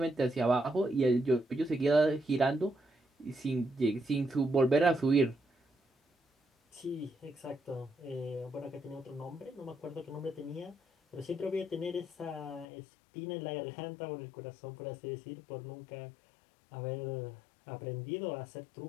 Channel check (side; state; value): right; drops out; at 12.7 s